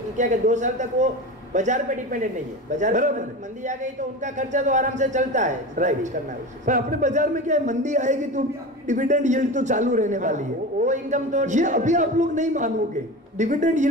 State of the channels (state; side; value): normal; both; correlation 0.28